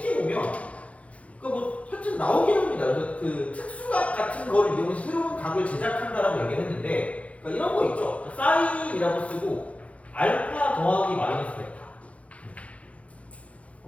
보면 뭐 하여튼 나오긴 합니다. 그래서 그 특수각 같은 거를 이용해서 새로운 각을 제작한다라고 얘기를 했는데 그러니까 이런 거 있죠. 사인이라고 쓰고 알파 더하기 마이너스 베타.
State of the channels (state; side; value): late; right; 0.064 ms